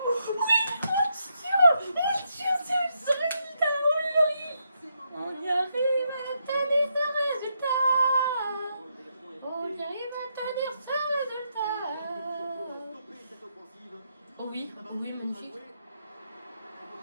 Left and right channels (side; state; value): both; inverted; correlation -0.80